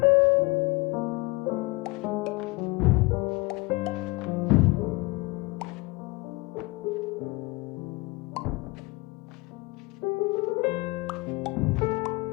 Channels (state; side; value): quieter; right; 24.4 dB